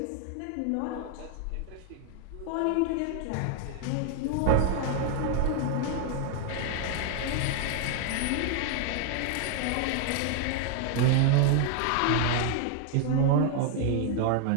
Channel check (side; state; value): both; different; correlation 0.00